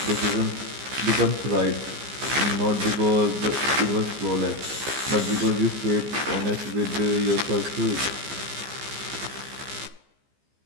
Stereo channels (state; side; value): late; left; 15 ms